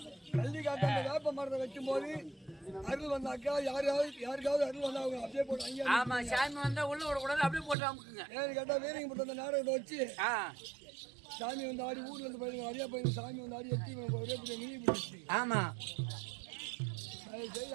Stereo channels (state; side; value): drops out; left; at 7.8 s